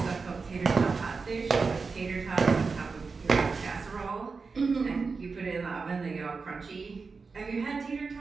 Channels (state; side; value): quieter; left; 4.6 dB